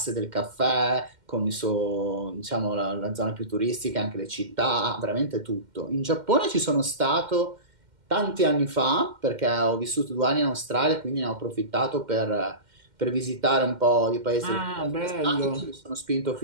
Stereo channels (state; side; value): late; left; 2.1 ms